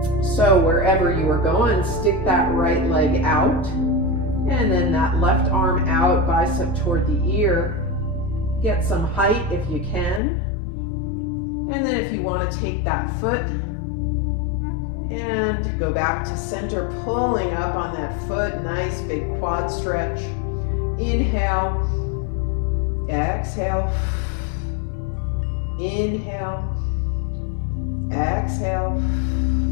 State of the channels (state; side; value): drops out; right; at 10.2 s